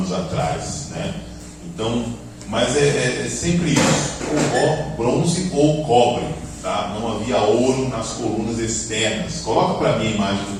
atrás, né? Então, mas é sempre isso, ou bronze ou cobre, tá? Não havia ouro nas colunas externas. Coloca para mim a imagem do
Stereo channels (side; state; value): both; identical; correlation 1.00